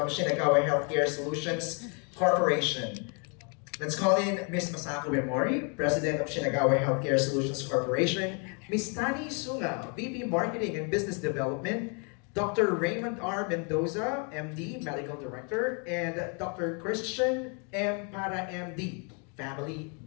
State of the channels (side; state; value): right; quieter; 36.5 dB